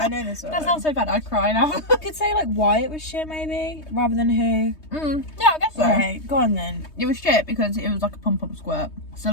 know this one. That sounds so bad. I cry now. I could say like why it was shit maybe, rather than who. Yeah, I guess so. Okay, go on then. It was shit because it was like a pump squirt. So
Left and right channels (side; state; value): right; late; 3.2 ms